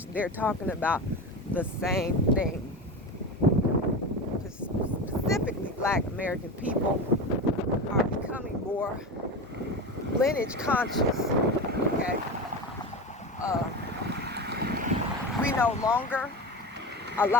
they're talking about the same thing. Specifically, Black American people are becoming more lineage conscious. Okay, we no longer. A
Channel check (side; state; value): both; normal; correlation 0.25